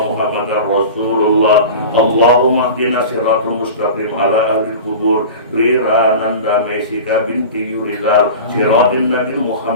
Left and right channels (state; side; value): inverted; both; correlation -0.34